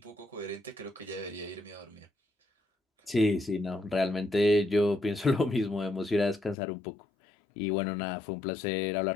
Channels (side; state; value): right; drops out; at 6.6 s